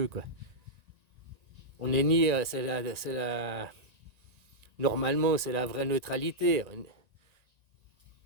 quoi. On est ni, c'est la Normalement, c'est la vraie neutralité,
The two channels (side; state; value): left; late; 1.9 ms